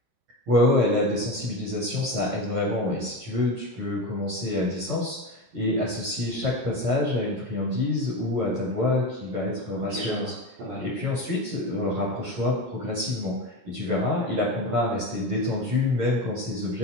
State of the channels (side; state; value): left; late; 17 ms